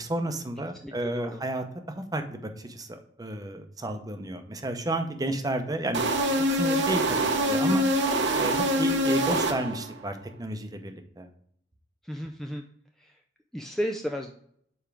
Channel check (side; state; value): both; normal; correlation 0.35